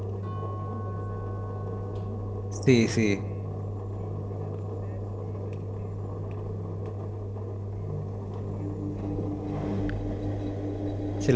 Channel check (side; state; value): both; identical; correlation 1.00